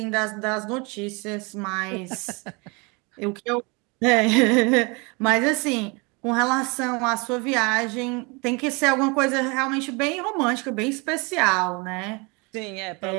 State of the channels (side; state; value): left; quieter; 29.2 dB